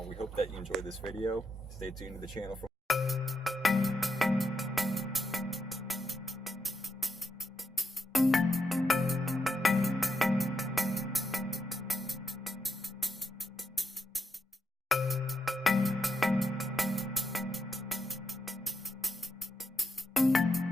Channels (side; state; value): both; normal; correlation 0.83